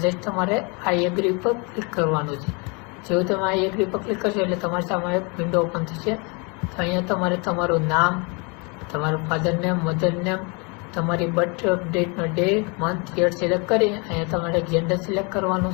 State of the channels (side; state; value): right; quieter; 31.6 dB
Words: જસ્ટ તમારે આઈ એગ્રી પર ક્લિક કરવાનું છે. જેવું તમે આઈ એગ્રી પર ક્લિક કરશો એટલે તમારી સામે એક વિન્ડો ઓપન થશે. તો અહીંયા તમારે તમારું નામ, તમારું ફાધર નેમ, મધર નેમ, તમારી બર્થ ડેટનો ડે, મંથ, યર સિલેક્ટ કરી અહીંયા તમારે જેન્ડર સિલેક્ટ